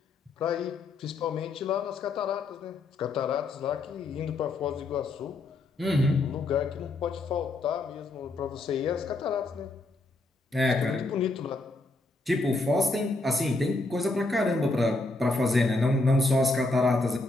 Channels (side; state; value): right; quieter; 3.1 dB